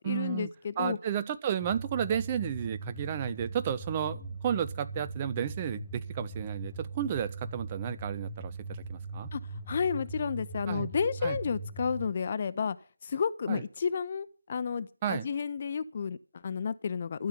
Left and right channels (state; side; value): inverted; both; correlation -0.67